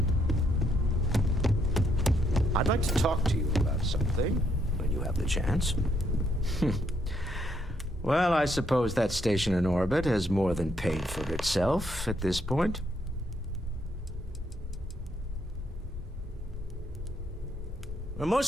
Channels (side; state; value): both; normal; correlation 0.73